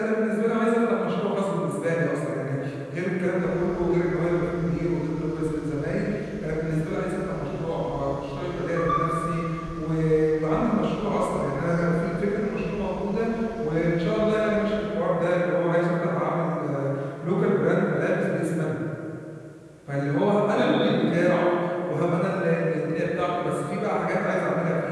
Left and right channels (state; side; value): identical; both; correlation 1.00